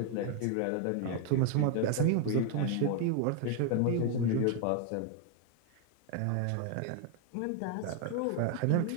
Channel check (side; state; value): both; different; correlation 0.01